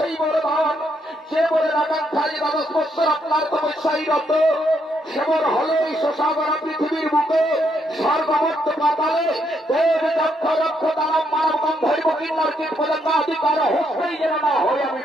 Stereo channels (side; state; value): both; normal; correlation 0.75